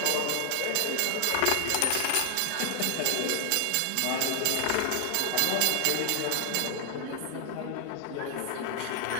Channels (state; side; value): different; both; correlation 0.00